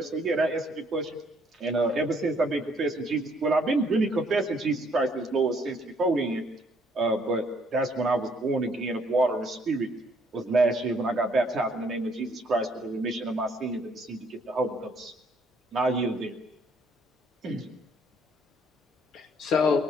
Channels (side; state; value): both; normal; correlation 0.65